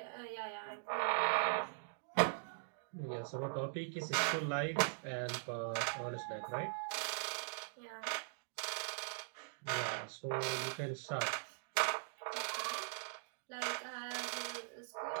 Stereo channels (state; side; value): silent; left; digital silence